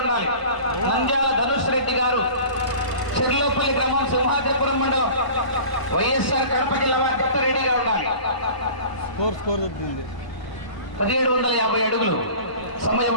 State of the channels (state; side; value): late; right; 1.0 ms